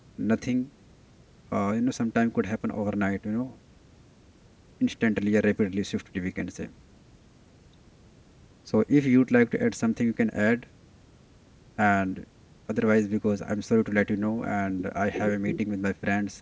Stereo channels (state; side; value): identical; both; correlation 1.00